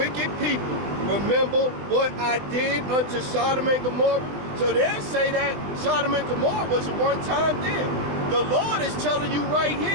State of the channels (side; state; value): left; late; 20 ms